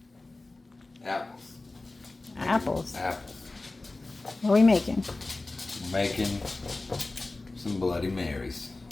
Apples. Apples. Apples. What we making? Making some Bloody Marys.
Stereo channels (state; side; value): quieter; right; 3.2 dB